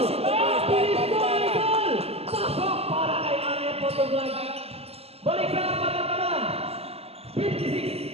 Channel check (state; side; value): late; left; 0.29 ms